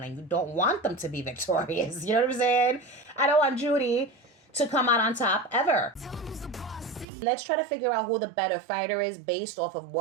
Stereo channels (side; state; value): left; drops out; at 7.1 s